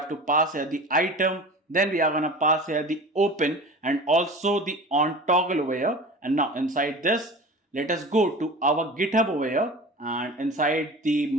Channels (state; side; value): normal; both; correlation 0.36